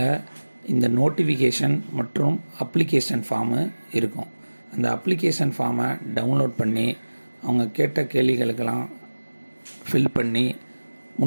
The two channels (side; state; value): both; inverted; correlation -1.00